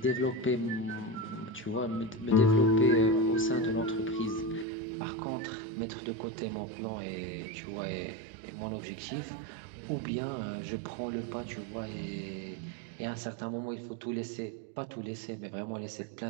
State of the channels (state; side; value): drops out; left; at 4.7 s